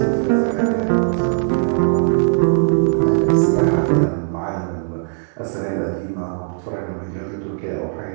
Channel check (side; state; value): left; silent; 63 dB below the other